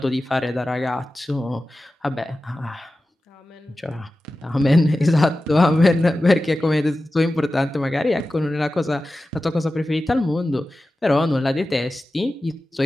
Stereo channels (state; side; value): normal; both; correlation 0.94